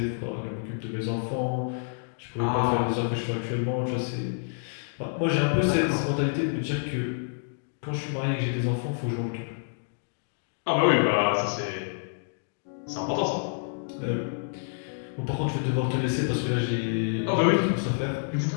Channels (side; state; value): right; silent; digital silence